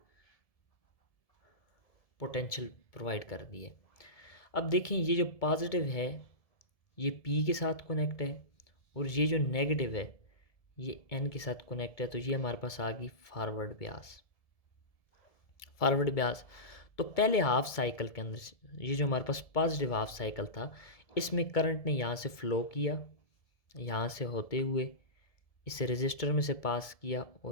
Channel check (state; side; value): late; right; 1.7 ms